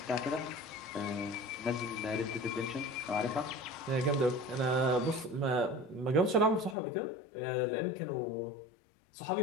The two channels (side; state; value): right; drops out; at 6.8 s